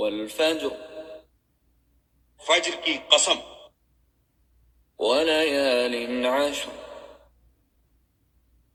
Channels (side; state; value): both; identical; correlation 1.00